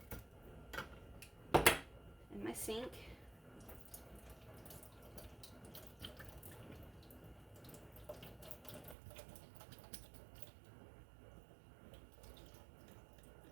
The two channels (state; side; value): drops out; left; at 9.0 s